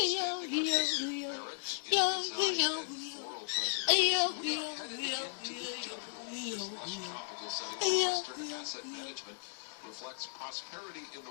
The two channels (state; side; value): silent; right; 54 dB below the other